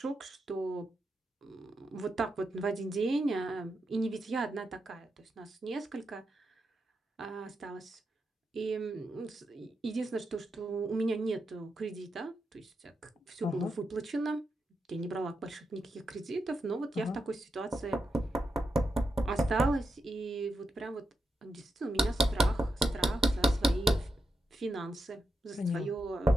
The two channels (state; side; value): normal; both; correlation 0.87